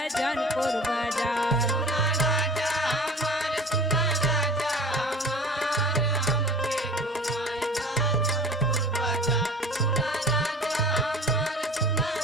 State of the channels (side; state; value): both; normal; correlation 0.41